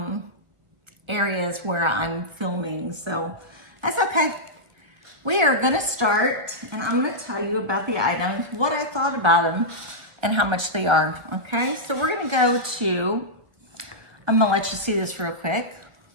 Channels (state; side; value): late; left; 1.3 ms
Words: areas where I'm filming, so that's okay. We are gonna start, and I'm gonna tell you about the items, what I thought about them, and how much they are, okay? So we're gonna go to, I'm gonna let you see this real quick.